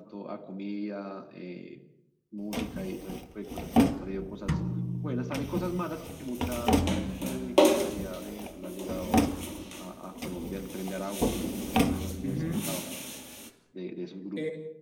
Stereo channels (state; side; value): identical; both; correlation 1.00